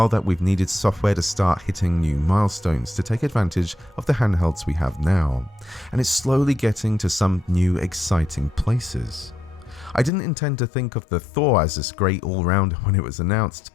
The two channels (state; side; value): drops out; right; at 10.1 s